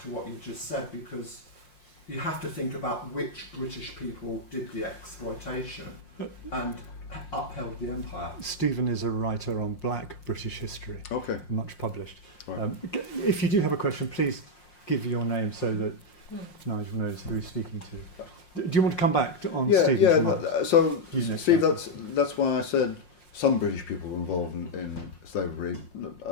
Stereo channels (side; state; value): right; late; 5.6 ms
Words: to what you just said, because you have to think about which British people did the exploitation and upheld the empire. Stephen is a writer on black British history, Okay. much published. Right. If you do have a question, please give your name so that Nigel knows who he's speaking to. Do you want to come back on Stephen's remarks? So, You next, Steve, Nigel. that's why I said some British people were involved in slavery.